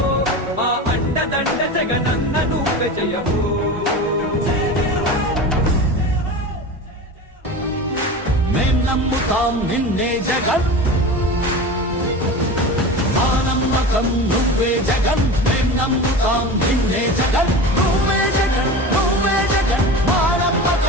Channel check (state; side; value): normal; both; correlation 0.30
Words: మా అండదండ జగనన్న నువ్వే జయ హో. మేం నమ్ముతాం నిన్నే జగన్, మా నమ్మకం నువ్వే జగన్. మేం నమ్ముతాం నిన్నే జగన్, నువ్వే జగన్, నువ్వే జగన్. మా